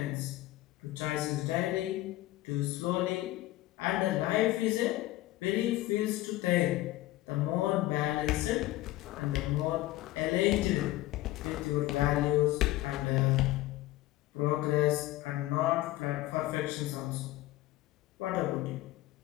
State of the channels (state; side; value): quieter; right; 16.7 dB